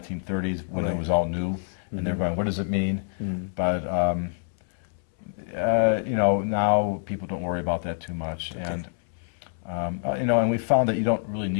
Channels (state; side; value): silent; right; 61 dB below the other